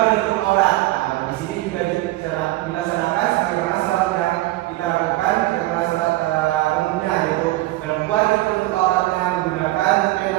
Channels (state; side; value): quieter; left; 17.8 dB